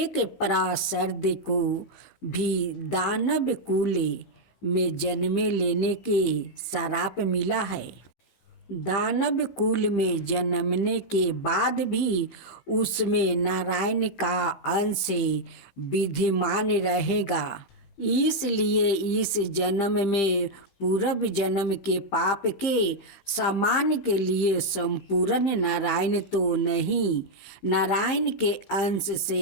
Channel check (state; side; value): late; right; 15 ms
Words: पार्षद को भी दानव कुल में जन्म लेने के श्राप मिला है। दानव कुल में जन्मने के बाद भी उसमें नारायण का अंश विद्यमान रहेगा। इसलिए इस जन्म में पूर्व जन्म के पाप के समान के लिए संपूर्ण नारायण तो नहीं, नारायण के अंश